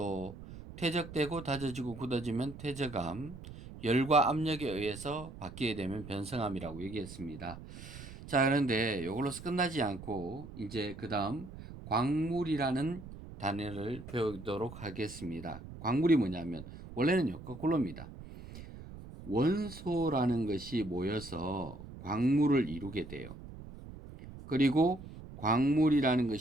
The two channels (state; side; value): noise; right; rumble, 14 dB below the sound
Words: 퇴적되고 다져지고 굳어지면 퇴적암, 열과 압력에 의해서 바뀌게 되면 변성암이라고 얘기했습니다. 자, 그런데 이걸로서 끝나지 않고 이제 그 다음 광물이라는 단어를 배우도록 하겠습니다. 광물이 뭐냐면 원래는요, 거꾸로입니다. 원소라는 것이 모여서 광물을 이루게 돼요. 그리고 광물이라는